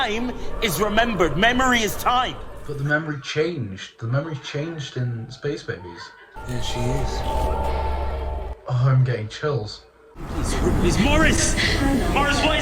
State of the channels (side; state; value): both; identical; correlation 1.00